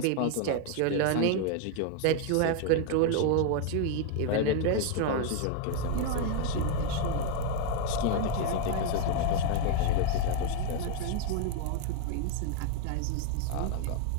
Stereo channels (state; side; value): different; both; correlation 0.01